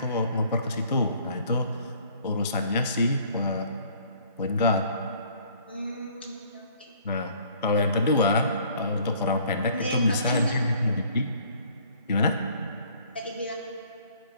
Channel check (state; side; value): inverted; both; correlation -0.57